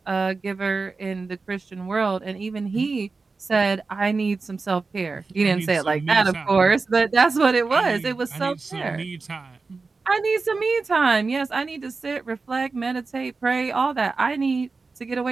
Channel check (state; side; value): quieter; left; 4.1 dB